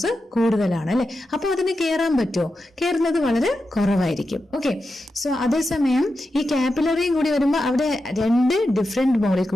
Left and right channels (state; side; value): normal; both; correlation 0.89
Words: കൂടുതലാണ് അല്ലെ, അപ്പൊ അതിന് കയറാൻ പറ്റുമോ? കയറുന്നത് വളരെ കുറവായിരിക്കും. ഓക്കെ, സോ അതേസമയം ഈ കാപ്പിലറിയും കൂടി വരുമ്പോൾ അവിടെ രണ്ട് ഡിഫറെന്റ്